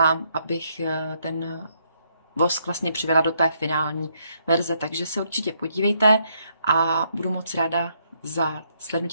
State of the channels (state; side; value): inverted; both; correlation -0.73